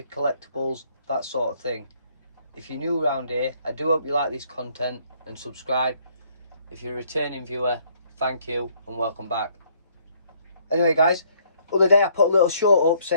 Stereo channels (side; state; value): both; inverted; correlation -0.65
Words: collectibles, that sort of thing. If you're new around here, I do hope you like this content and subscribe. If you're a returning viewer, thank you and welcome back. Anyway guys, other day I put a little short up